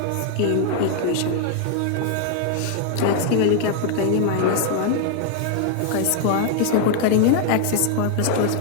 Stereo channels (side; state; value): both; different; correlation 0.00